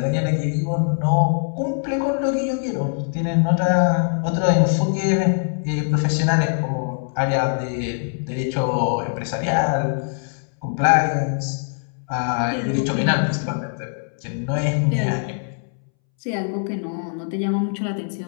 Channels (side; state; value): right; silent; 64 dB below the other